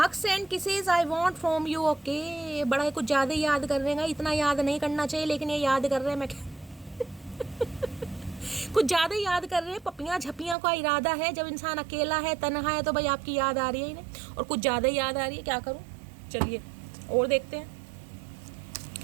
and kisses I want from you. Okay, बड़ा कुछ ज़्यादा याद कर रहे हैं, इतना याद नहीं करना चाहिए लेकिन ये याद कर रहे हैं। मैं कुछ ज़्यादा याद कर रहे हैं। पपियाँ झपियाँ का इरादा है, जब इंसान अकेला है, तन्हा है, तो भाई आपकी याद आ रही है इन्हें, और कुछ ज़्यादा याद आ रही है। क्या करूँ, चलिए और देखते हैं।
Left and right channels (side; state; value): left; drops out; at 10.6 s